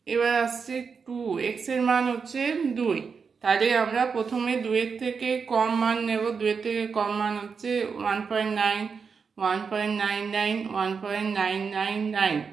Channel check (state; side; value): quieter; left; 5.6 dB